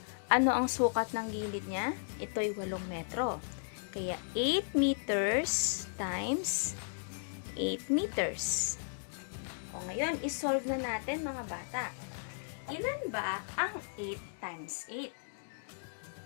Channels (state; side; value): silent; right; digital silence